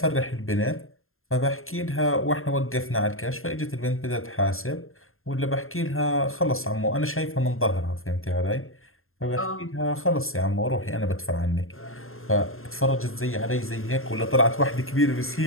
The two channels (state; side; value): late; right; 0.61 ms